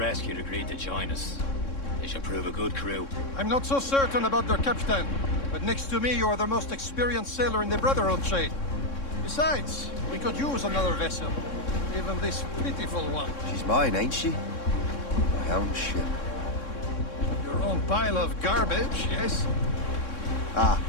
agreed to join us. They should prove a good crew. I'm not so certain about their captain, but next to me you are the most experienced sailor in the Brotherhood, Shay. Besides, we could use another vessel. Even this pitiful one. She's mine, ain't she? My own ship. Your own pile of garbage, yes? Ah,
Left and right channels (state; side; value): late; right; 3.6 ms